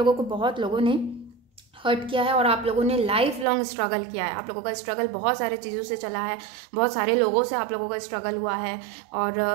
को बहुत लोगों ने हर्ट किया है, और आप लोगों ने लाइफ लॉन्ग स्ट्रगल किया है। आप लोगों का स्ट्रगल बहुत सारे चीज़ों से चला है, बहुत सारे लोगों से आप लोगों का स्ट्रगल हुआ है, और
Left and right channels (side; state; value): left; drops out; at 3.5 s